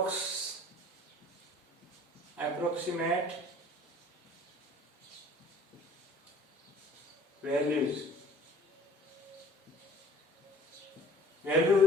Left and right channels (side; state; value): both; normal; correlation 0.50